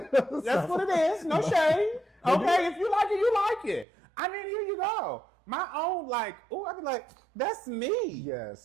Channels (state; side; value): drops out; left; at 3.9 s